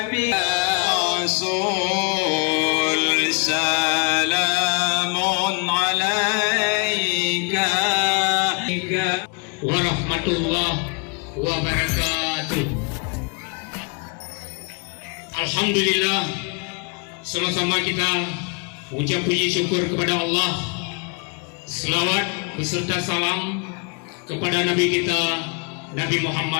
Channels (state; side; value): quieter; right; 36.0 dB